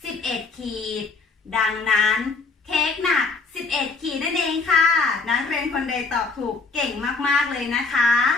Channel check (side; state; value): right; quieter; 4.1 dB